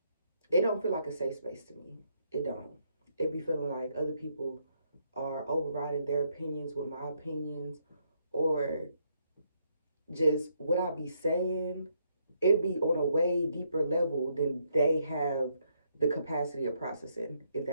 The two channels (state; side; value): inverted; both; correlation -0.75